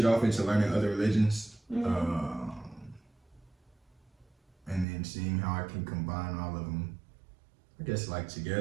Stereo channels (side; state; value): left; drops out; at 4.9 s